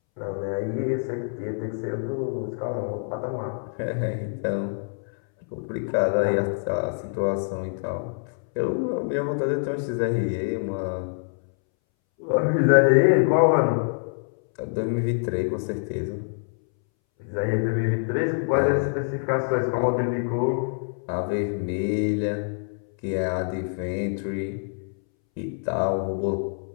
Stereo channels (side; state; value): right; silent; 61 dB below the other